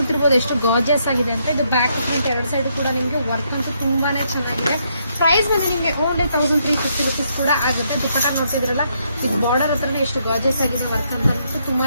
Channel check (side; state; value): both; inverted; correlation -0.75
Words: ಎಷ್ಟು ಗಾರ್ಜಿಯಸ್ ಆಗಿದೆ ಅಂತ. ಇದು ಬ್ಯಾಕ್ ಪ್ರಿಂಟ್ ಎರಡು ಸೈಡ್ ಕೂಡ ನಿಮ್ಗೆ ವರ್ಕ್ ಅಂತೂ ತುಂಬಾನೇ ಚೆನ್ನಾಗಿದೆ. ಪ್ರೈಸ್ ಬಂದು ನಿಮ್ಗೆ ಓನ್ಲಿ 1350 rupees ಕೂಡ ಆಗುತ್ತೆ. ದುಪಟ್ಟ ನೋಡ್ತಿದ್ರಲ್ಲ, ಇದು ಬಾರ್ಡರ್ ಹತ್ರನೇ ಎಷ್ಟು ಗಾರ್ಜಿಯಸ್ ಆಗಿದೆ ವರ್ಕ್ ಅಂತ.